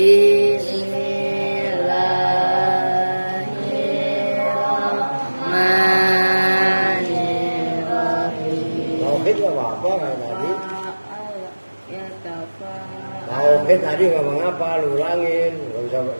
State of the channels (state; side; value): inverted; both; correlation -1.00